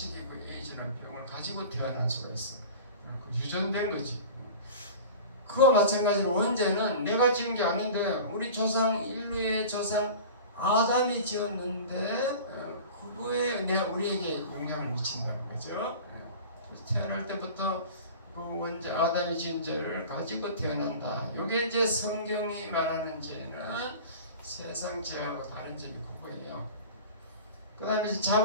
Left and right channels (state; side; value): inverted; both; correlation -0.37